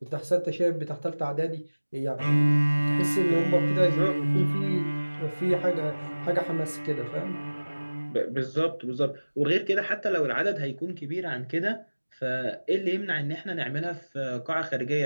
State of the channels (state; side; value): inverted; both; correlation -1.00